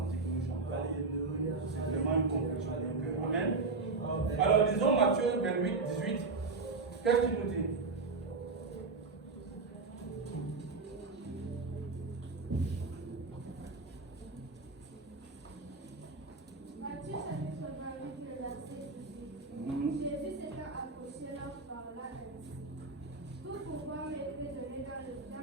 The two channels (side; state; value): left; quieter; 4.0 dB